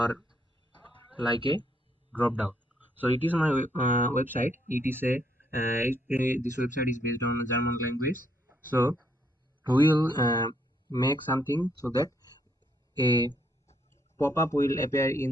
like a drop down. So it is my website. It is this website is based on German language. So we will make something so that a pop-up will appear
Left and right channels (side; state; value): both; normal; correlation 0.72